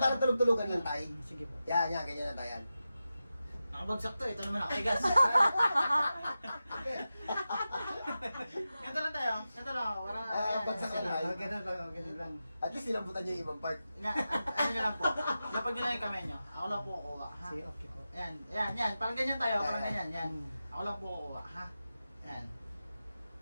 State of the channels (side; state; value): both; inverted; correlation -0.92